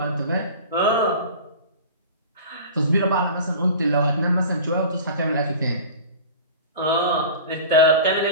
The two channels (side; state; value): both; inverted; correlation -0.37